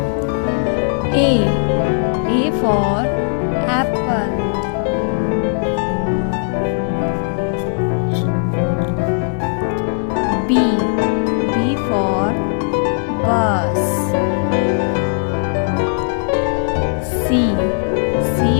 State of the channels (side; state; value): right; silent; digital silence